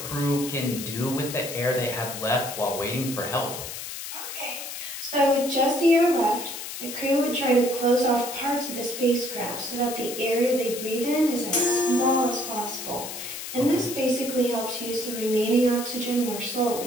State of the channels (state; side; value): noise; left; hiss, 8 dB below the sound